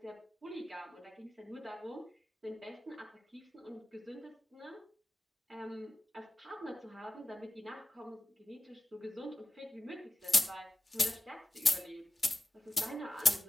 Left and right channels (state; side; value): normal; both; correlation 0.95